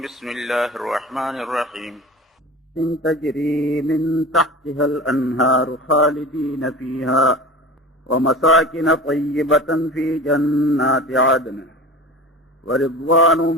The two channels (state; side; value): normal; both; correlation 0.35